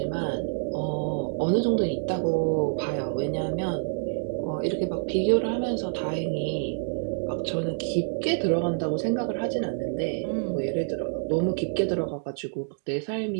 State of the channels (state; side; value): silent; left; digital silence